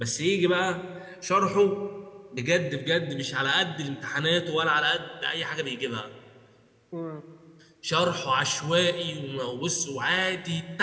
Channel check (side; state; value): both; identical; correlation 1.00